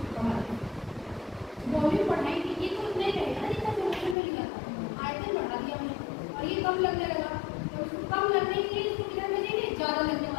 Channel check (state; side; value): drops out; right; at 4.2 s